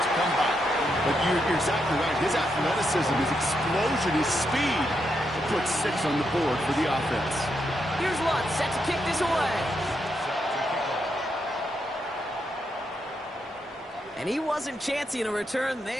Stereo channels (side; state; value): both; normal; correlation 0.81